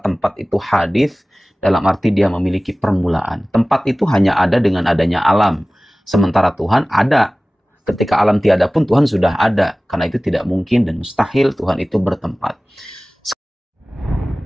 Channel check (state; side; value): normal; both; correlation 0.98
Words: itu hadits dalam arti dia memiliki permulaan. Tempat itu hanya ada dengan adanya alam. Sementara Tuhan ada. Ketika alam tiada pun Tuhan sudah ada. Karena itu tidak mungkin dan mustahil Tuhan itu bertempat.